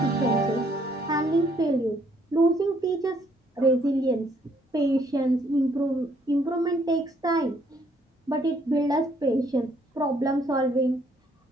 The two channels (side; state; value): both; normal; correlation 0.67